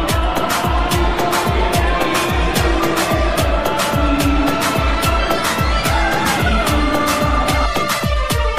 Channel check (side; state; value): both; identical; correlation 1.00